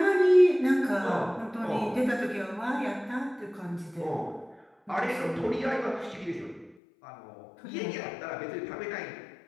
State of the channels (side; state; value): right; drops out; at 6.8 s